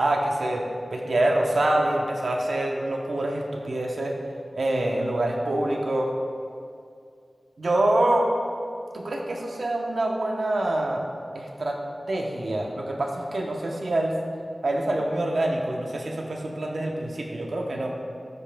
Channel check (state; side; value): normal; both; correlation 0.96